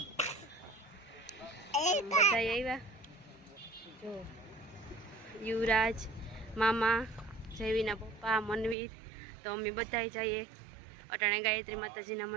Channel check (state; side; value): drops out; left; at 8.8 s